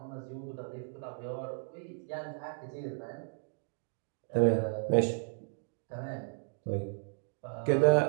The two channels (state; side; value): silent; left; digital silence